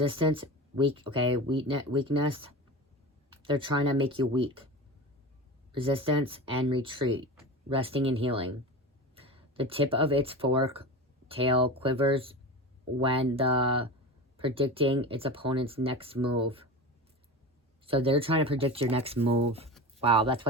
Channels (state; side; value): normal; both; correlation 0.29